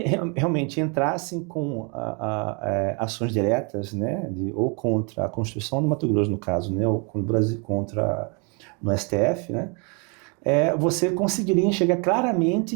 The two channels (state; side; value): quieter; left; 34.1 dB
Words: realmente entrassem com ações diretas, né, ou contra a Constituição do Mato Grosso, no caso, né, ou contra no STF, né, você conseguiria enxergar claramente